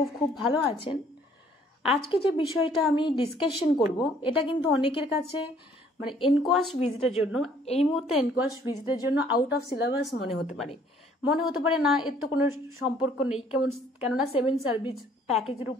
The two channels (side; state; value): both; normal; correlation 0.60